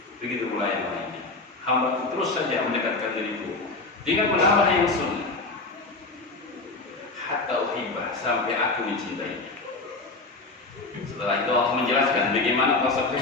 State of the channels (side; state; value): right; quieter; 3.4 dB